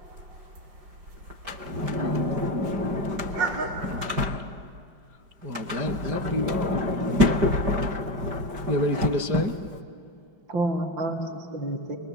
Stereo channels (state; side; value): late; left; 5.1 ms